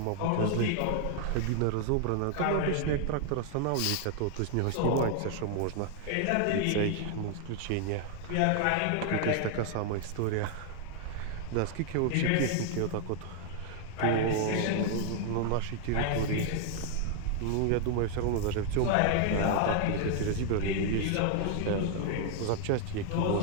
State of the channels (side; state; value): both; different; correlation 0.00